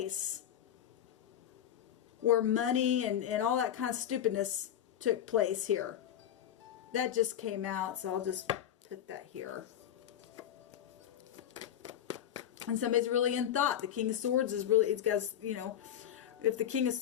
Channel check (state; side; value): quieter; right; 10.4 dB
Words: where money and all that kind of stupidness took place here. That just came out, so I'll just put that here. And somebody's really in thought. The King of Swords is really, it's got, you know, if the King of